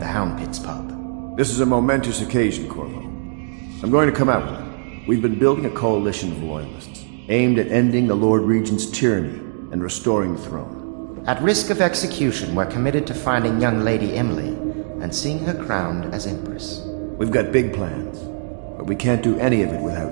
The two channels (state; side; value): silent; left; 65 dB below the other